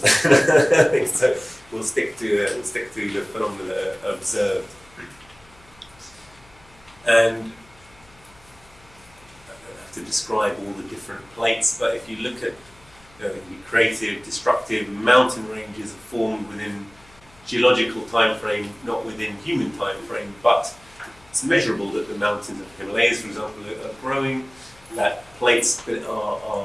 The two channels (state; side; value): noise; left; hum, 28 dB below the sound